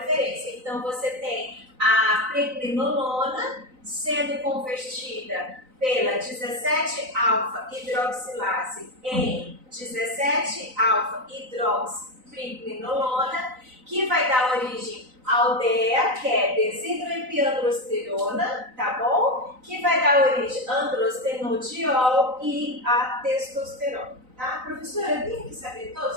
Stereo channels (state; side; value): late; left; 3.9 ms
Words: Então, você tem a pregnenolona sendo convertida pela 17-alfa-hidroxilase em 17-alfa-hidroxipregnenolona, que vai dar origem ao DEA, que é desidroepiandrosterona, tá bom? Que vai dar origem a androstenodiol e a testosterona, tá? Professora, eu tenho que saber